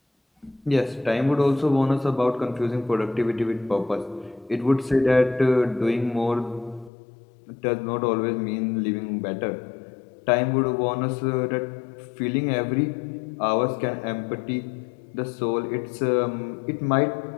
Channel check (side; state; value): right; drops out; at 6.9 s